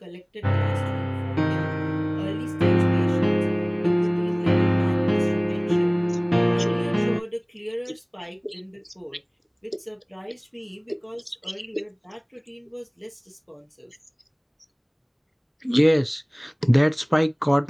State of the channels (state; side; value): identical; both; correlation 1.00